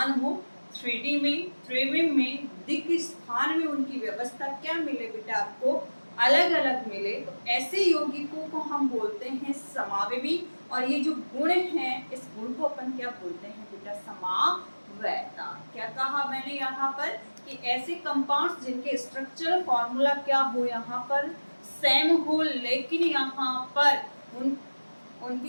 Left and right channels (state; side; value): inverted; both; correlation -1.00